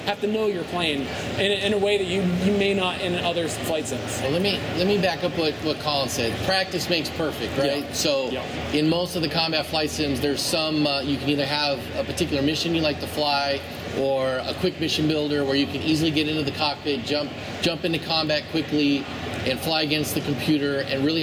to know your plane in a way that you may not in other flight sims. Well, let me back up what Colin said. Practice makes perfect, right? Yeah. So Yeah. in most of the combat flight sims, there's some you can either have a particular mission you like to fly, or a quick mission builder where you can easily get into the cockpit, jump into combat quickly, and fly against the computer and really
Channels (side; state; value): both; identical; correlation 1.00